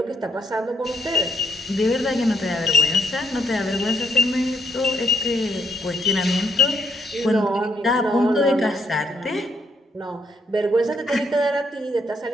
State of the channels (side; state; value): both; normal; correlation 0.71